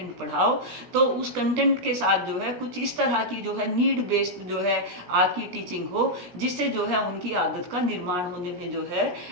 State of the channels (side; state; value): left; late; 17 ms